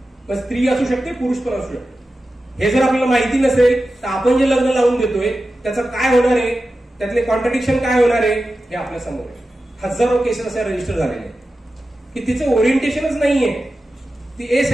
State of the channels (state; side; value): normal; both; correlation 0.93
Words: मग स्त्री असू शकते, पुरुष पण असू शकते. हे जर आपल्याला माहिती नसेल तर आपण जे लग्न लावून देतोय त्याचं काय होणार आहे, त्यातले कॉन्ट्रडिक्शन काय होणार आहे हे आपल्या समोर आहे. हजारो केसेस असे रजिस्टर झालेले की तिचं ओरिएंटेशनच नाहीये, ती